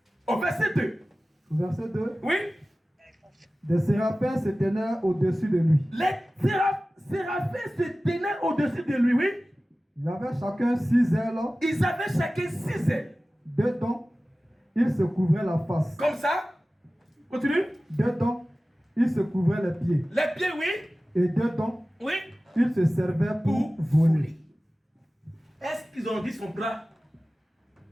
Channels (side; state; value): both; normal; correlation 0.96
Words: Au verset 2. Au verset 2, Oui? des séraphins se tenaient au-dessus de lui. Les séraphins se tenaient au-dessus de lui, oui? Ils avaient chacun 6 ailes. Ils avaient chacun 6 ailes. Dedans, il se couvrait la face. Comme ça. Continue. Dedans, il se couvrait les pieds. Les pieds, oui? Et dedans, Oui? il se servait pour Pour voler. voler. Est-ce qu'ils ont dit son bras?